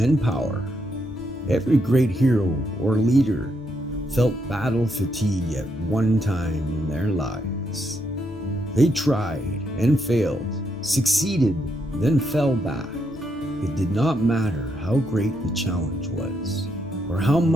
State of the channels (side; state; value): both; normal; correlation 0.78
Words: power. Every great hero or leader felt battle fatigue at one time in their lives. They tried and failed, succeeded, then fell back. It did not matter how great the challenge was, or how